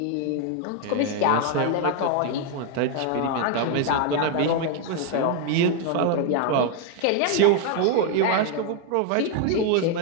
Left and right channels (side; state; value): both; different; correlation 0.00